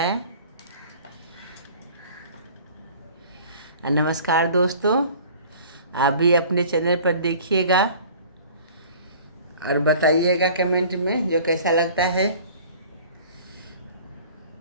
नमस्कार दोस्तों, आप भी अपने चैनल पर देखिएगा और बताइएगा कमेंट में जो कैसा लगता है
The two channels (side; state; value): both; inverted; correlation -0.47